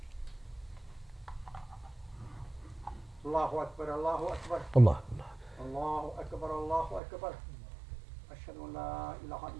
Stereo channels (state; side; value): drops out; left; at 7.0 s